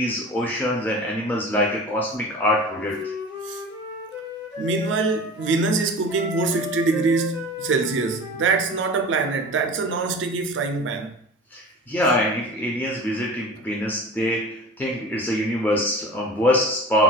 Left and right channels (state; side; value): normal; both; correlation 0.36